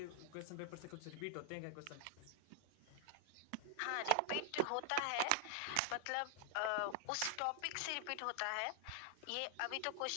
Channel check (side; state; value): both; different; correlation 0.00